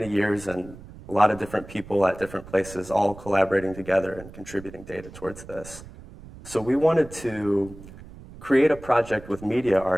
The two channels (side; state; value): right; noise; rumble, 17 dB below the sound